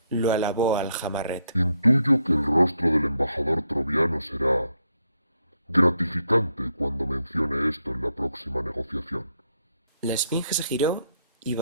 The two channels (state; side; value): inverted; both; correlation -0.77